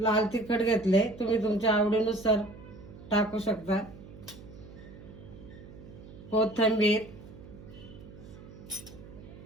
तिखट घेतले, तुम्ही तुमच्या आवडीनुसार टाकू शकता, कोथिंबीर.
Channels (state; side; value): noise; right; hum, 17 dB below the sound